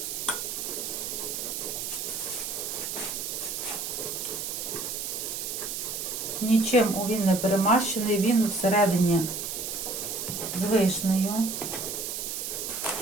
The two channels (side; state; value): right; noise; hiss, 4 dB below the sound